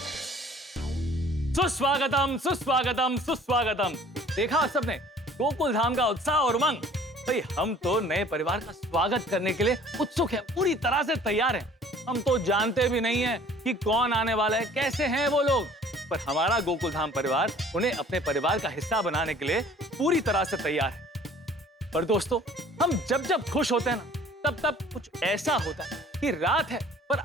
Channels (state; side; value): normal; both; correlation 0.52